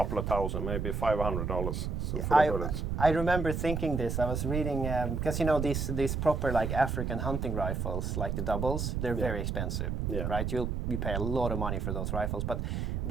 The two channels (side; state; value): right; noise; rumble, 1 dB below the sound